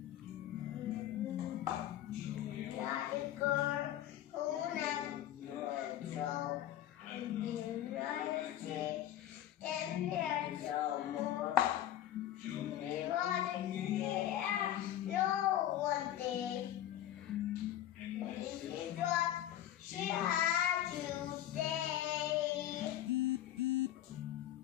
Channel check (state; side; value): quieter; right; 12.1 dB